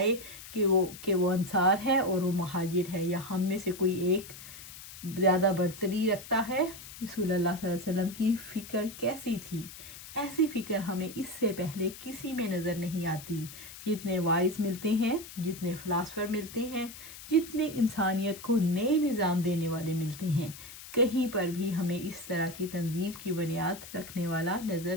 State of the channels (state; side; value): noise; left; hiss, 14 dB below the sound